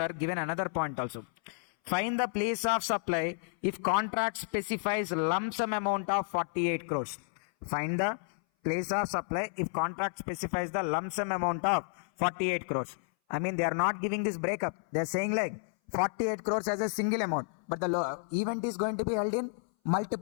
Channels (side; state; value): right; silent; 57 dB below the other